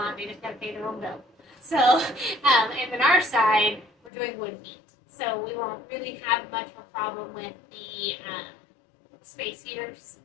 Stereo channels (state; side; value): drops out; right; at 4.1 s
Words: They just got to pay their own bill. So, and on our side, we're doing wood heat. So we won't really have much of a problem with the space heaters